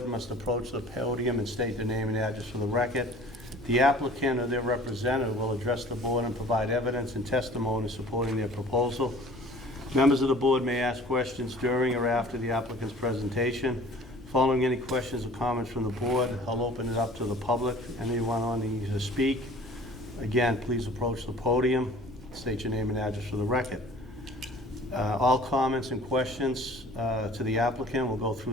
must approach the podium and state their name and address for the record. The applicant or their representative will address the board and provide evidence and testimony supporting their proposal. Members of the board may ask questions during or after the applicant's presentation. Following any questions or comments from the board, I'll open it up to the public. Anyone wanting to speak, again, please approach the podium, state your name and address for the record. All comments and questions to the applicant will go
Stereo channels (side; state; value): both; normal; correlation 0.47